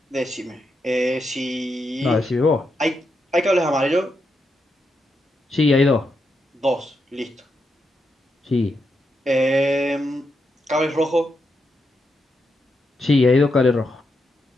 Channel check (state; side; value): normal; both; correlation 0.83